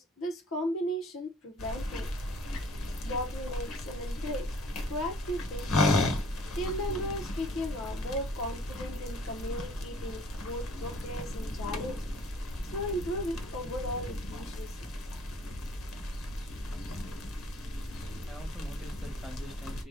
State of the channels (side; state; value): both; normal; correlation 0.56